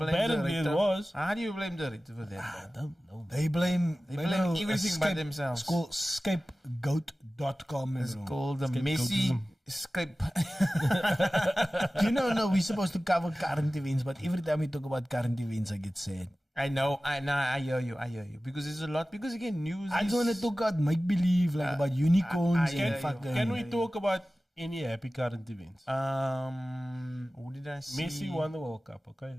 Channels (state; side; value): normal; both; correlation 0.96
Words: Apparently the director. it was. How do you blame the director for that? I don't know. They blame everything by themselves. It's called scapegoat.com. It's called the messy escape. You know, no, we're supposed to cover current events, but every time we talk about current events, I get sad. I know, I hear you. Because there's a lot, because again, news I just want to talk about make-believe, like about unicorns and fucking... Can we talk about any happy current events? Who did I see? Messi won the World Cup, okay?